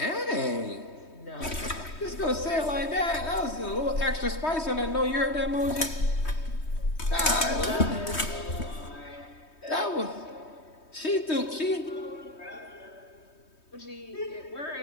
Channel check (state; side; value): late; right; 3.2 ms